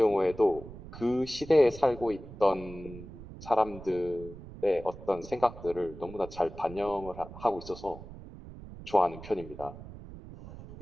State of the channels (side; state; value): right; noise; rumble, 15 dB below the sound